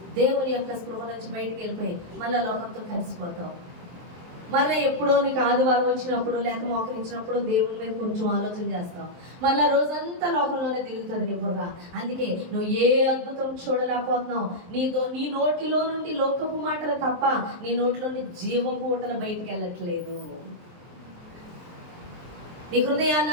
దేవుని యొక్క స్పృహ నుంచి బయటికి వెళ్ళిపోయి మళ్ళీ లోకంతో కలిసిపోతావు. మళ్ళీ ఎప్పుడో నీకు ఆదివారం వచ్చినప్పుడు లేక మోకరించినప్పుడు దేవుని మీద కొంచెం ఆలోచన చేస్తావు. మళ్ళీ రోజంతా లోకంలోనే తిరుగుతుంది నీ బుర్ర. అందుకే నువ్వు ఏ అద్భుతం చూడలేకపోతున్నావు. నీ నోటిలో నుండి లోకపు మాటలు తప్ప నీ నోటిలో నుండి జీవపు ఊటలు బయటికి వెళ్ళట్లేదు. నీ హృదయాన్ని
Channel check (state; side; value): late; left; 23 ms